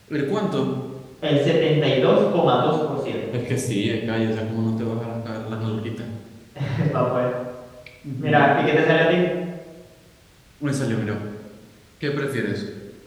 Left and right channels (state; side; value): identical; both; correlation 1.00